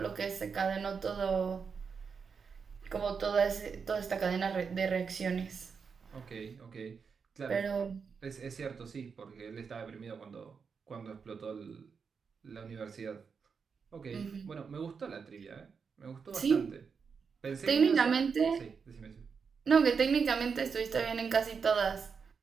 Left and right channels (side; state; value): left; quieter; 5.8 dB